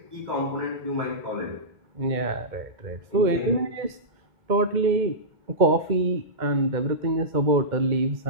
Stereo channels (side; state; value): left; late; 2.1 ms